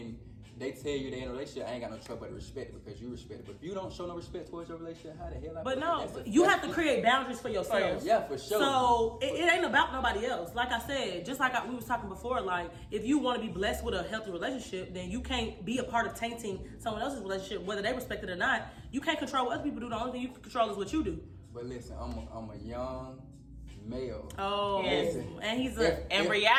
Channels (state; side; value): identical; both; correlation 1.00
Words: they tell you they in a relationship, I ain't got no trouble but to respect it because you respect it. But if you don't show no respect towards your relationship, how the hell I But no, you have to create boundaries for yourself. Yeah, for sure. So it ain't about nobody else. Like I said, just like we was talking before, like if you want to be blessed with a healthy relationship, then you can't be a part of tainting someone else's relationship, whether they respect it or not. You can't control what other people do. The only thing you can control is what you do. But listen, I'm a young male. Oh, Yes. and he's